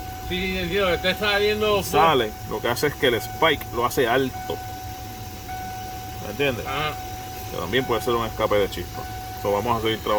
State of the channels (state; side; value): identical; both; correlation 1.00